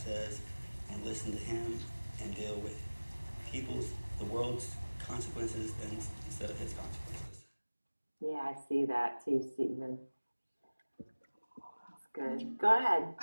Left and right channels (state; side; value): inverted; both; correlation -1.00